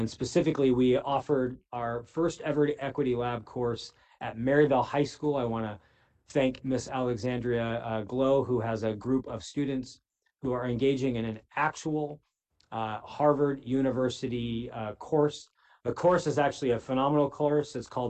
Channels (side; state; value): both; identical; correlation 1.00